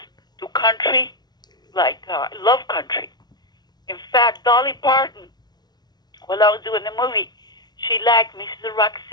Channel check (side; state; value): right; late; 0.20 ms